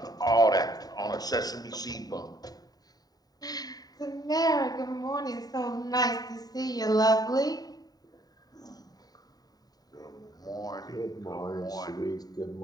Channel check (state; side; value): late; right; 0.18 ms